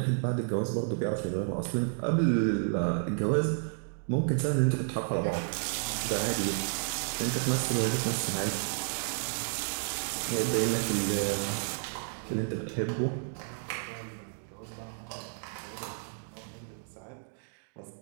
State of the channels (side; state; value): left; silent; digital silence